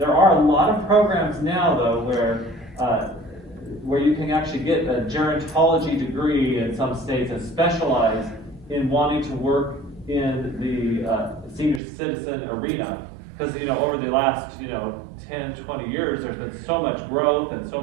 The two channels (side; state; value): left; drops out; at 11.8 s